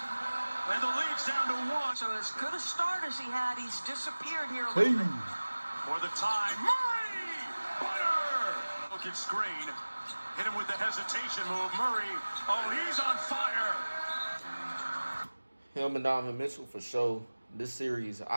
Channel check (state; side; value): inverted; both; correlation -1.00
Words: And the lead's down to 1. So as good a start as he had, he's disappeared here a little bit. For the time, Murray! Butter! Look at screen. Hit him with the hesitation move. Murray, oh, he's on fire! Him and Donovan Mitchell for sure. This series,